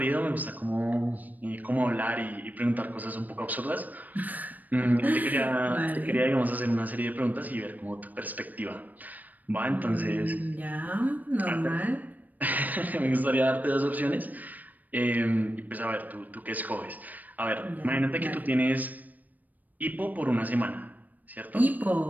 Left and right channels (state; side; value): late; left; 0.082 ms